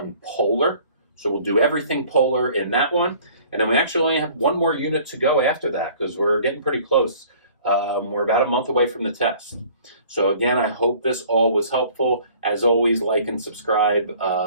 polar. So we'll do everything polar in that one. And then we actually only have one more unit to go after that because we're getting pretty close. We're about a month away from the test. So again, I hope this all was helpful. As always, like and subscribe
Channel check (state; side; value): inverted; both; correlation -0.52